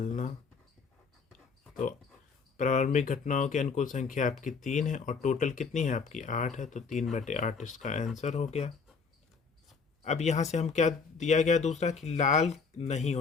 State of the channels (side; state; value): right; quieter; 5.2 dB